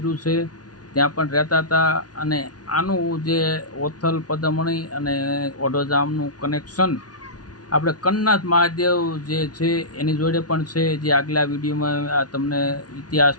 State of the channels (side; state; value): right; late; 0.69 ms